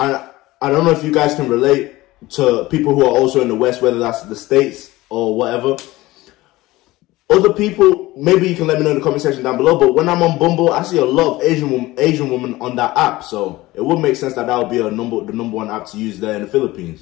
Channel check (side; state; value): right; quieter; 18.7 dB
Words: don't know if you guys can relate to people who are also in the West, whether that's the States or whatever. Other people, maybe you can let me know in the comment section down below, but when I'm on Bumble, I see a lot of Asian women on that app, so it would make sense that that would be the number one app to use there in the